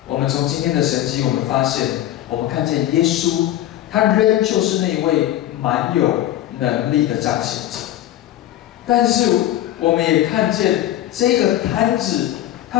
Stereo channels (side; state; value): right; quieter; 13.2 dB